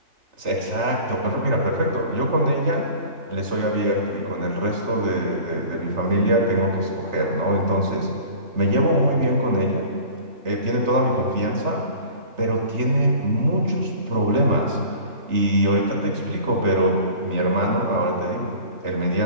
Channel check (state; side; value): late; left; 3.3 ms